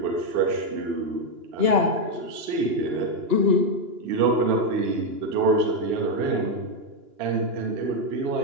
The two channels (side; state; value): left; late; 2.9 ms